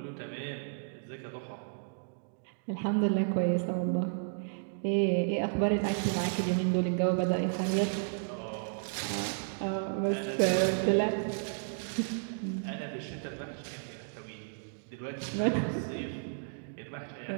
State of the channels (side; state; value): left; silent; digital silence